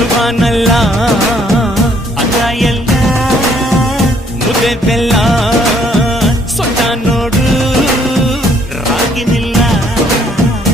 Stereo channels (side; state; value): both; normal; correlation 0.65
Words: ಅನ್ನ ಎಲ್ಲ ಮುದ್ದೆ ಬೆಲ್ಲ ಸೊಟ್ಟ ನೋಡು ರಾಗಿನಿಲ್ಲ